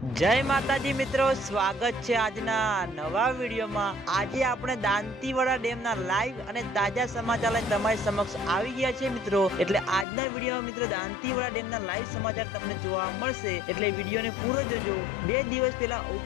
जय माताजी मित्रों, स्वागत है आजना नवा वीडियो में। आज आपणे दांतीवाड़ा डेमना लाइव अने ताजा समाचार लईने तमारी समक्ष आवी गया छे मित्रों। एटले आजना वीडियो में मित्रों दांतीवाड़ा डेमना लाइव समाचार तमने जोवा मळशे, एटले वीडियो ने पूरो जोजो। 2 दिवस पहेला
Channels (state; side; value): drops out; right; at 10.1 s